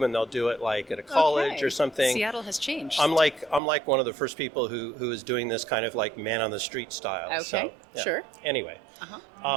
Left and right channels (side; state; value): left; drops out; at 3.6 s